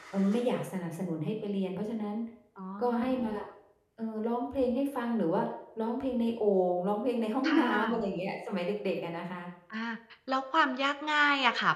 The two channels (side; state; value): both; identical; correlation 1.00